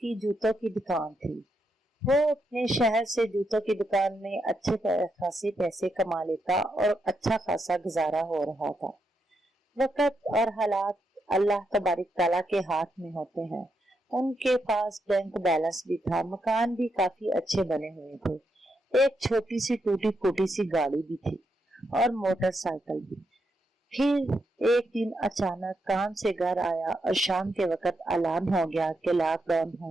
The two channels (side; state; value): both; normal; correlation 0.81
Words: जूतों की दुकान थी। वो अपने शहर से जूतों की दुकान में अच्छे खासे पैसे कमा लेता और अच्छा खासा गुजारा हो रहा था। वक्त और हालात अल्लाह तबारिक ताला के हाथ में होते हैं। उनके पास बैंक बैलेंस भी था, मकान भी काफी अच्छे बने हुए थे, एक छोटी सी टूटी फूटी सी गाड़ी भी थी और मोटरसाइकिल भी। फिर एक दिन अचानक काम से घर आया और शाम के वक्त ऐलान हो गया कि लॉकडाउन